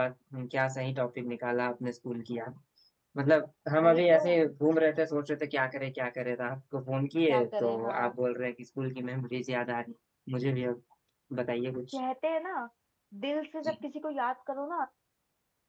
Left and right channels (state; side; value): identical; both; correlation 1.00